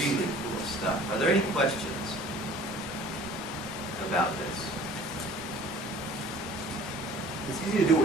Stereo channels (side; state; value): both; normal; correlation 0.48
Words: cool stuff. Are there any questions about this? It's easy to do